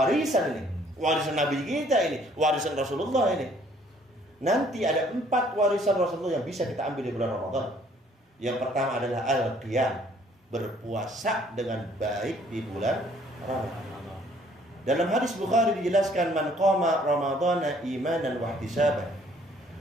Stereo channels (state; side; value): normal; both; correlation 0.61